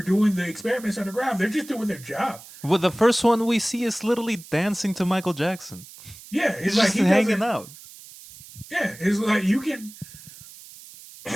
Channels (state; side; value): noise; right; hiss, 18 dB below the sound